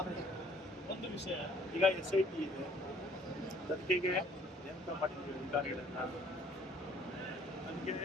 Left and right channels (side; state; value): both; normal; correlation 0.58